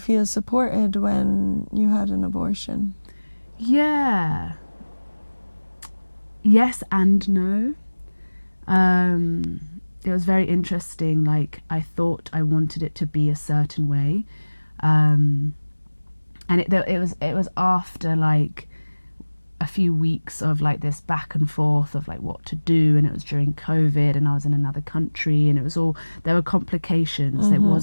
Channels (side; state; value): both; inverted; correlation -1.00